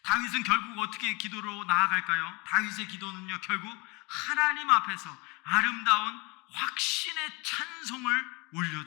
다윗은 결국 어떻게 기도로 나아갈까요? 다윗의 기도는요, 결국 하나님 앞에서 아름다운 확신의 찬송을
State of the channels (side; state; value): right; quieter; 27.0 dB